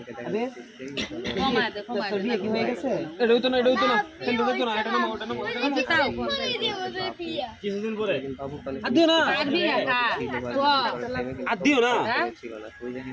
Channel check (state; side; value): identical; both; correlation 1.00